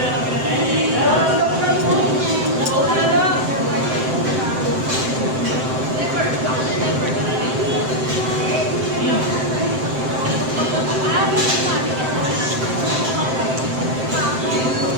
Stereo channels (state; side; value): late; left; 7.7 ms